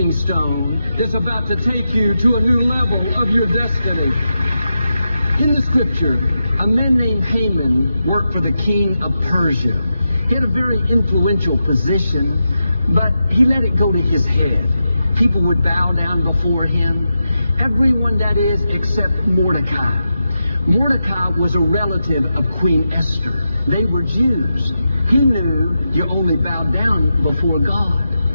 stone that's about to take you to a new level of your destiny. In the scripture, a man named Haman worked for the king of Persia. He had a very influential position, but he let it go to his head. People would bow down before him. Everyone, that is, except Mordecai. Mordecai was a relative of Queen Esther. They were Jews. He knew you only bowed down before God.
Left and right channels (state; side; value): inverted; both; correlation -0.88